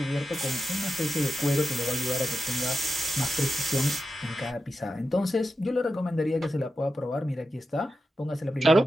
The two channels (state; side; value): normal; both; correlation 0.91